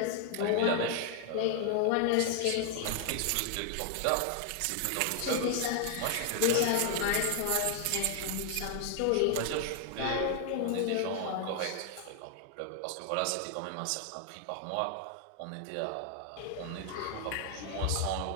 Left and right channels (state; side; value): different; both; correlation 0.00